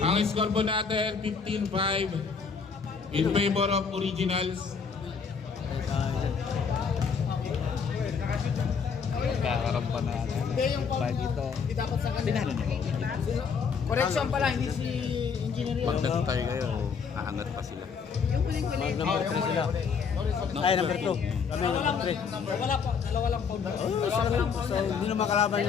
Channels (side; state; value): right; quieter; 5.9 dB